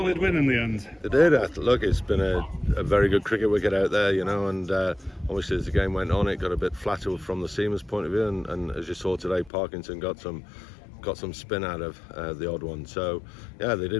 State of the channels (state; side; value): drops out; right; at 9.5 s